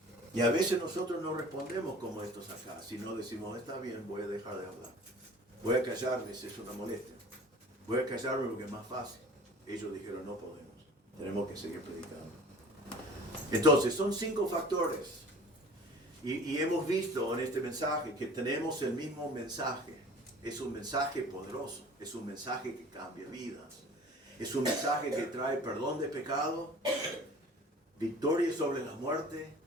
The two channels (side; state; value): both; normal; correlation 0.45